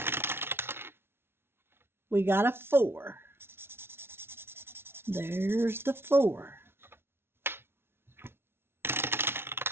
We got a 4. There's the 4.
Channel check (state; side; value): late; left; 0.12 ms